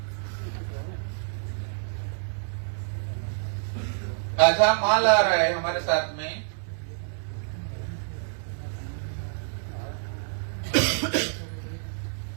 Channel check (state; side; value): silent; left; digital silence